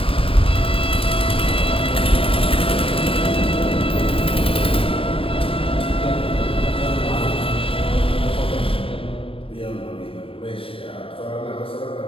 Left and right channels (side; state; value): right; late; 0.26 ms